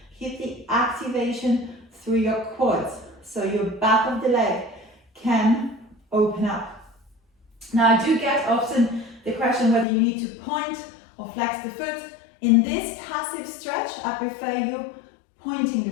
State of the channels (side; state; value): right; drops out; at 9.9 s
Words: Keep the activation through your quads, so your back of the leg can open up. Now, I do get often the question whether you need to point or flex the foot. In this passive stretch, I prefer you pointing